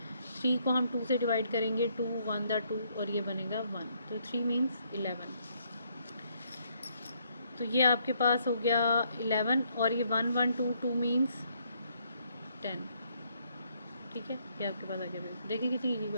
3 को हम 2 से डिवाइड करेंगे, 2 1 दा 2 और ये बनेगा 1, तो 3 मीन्स 11। तो ये आपके पास हो गया 11 और ये 1 1 2 2 मीन्स 10। ठीक है, ये आपके पास आ गया। देखिए कितनी इजी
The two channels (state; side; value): inverted; both; correlation -0.71